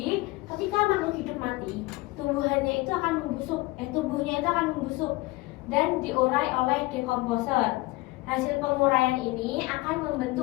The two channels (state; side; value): quieter; right; 21.4 dB